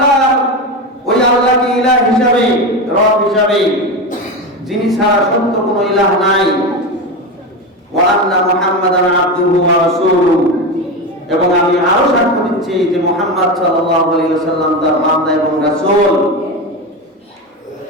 আল্লাহকে ইলাহ হিসাবে, রব হিসাবে, যিনি ছাড়া সত্য কোনো ইলাহ নাই, ওয়া আন্না মুহাম্মাদান আবদুহু ওয়া রাসূলুহু, এবং আমি আরো সাক্ষ্য দিচ্ছি যে মুহাম্মদ সাল্লাল্লাহু আলাইহি ওয়াসাল্লাম তার বান্দা এবং রাসূল।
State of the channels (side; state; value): both; normal; correlation 0.19